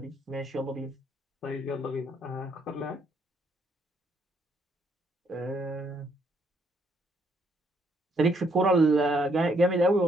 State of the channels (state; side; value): normal; both; correlation 0.71